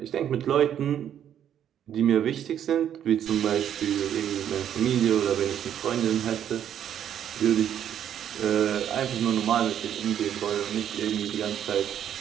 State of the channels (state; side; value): quieter; left; 9.9 dB